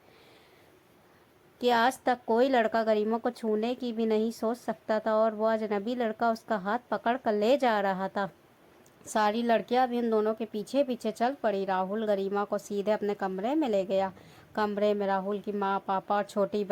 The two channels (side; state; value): both; identical; correlation 1.00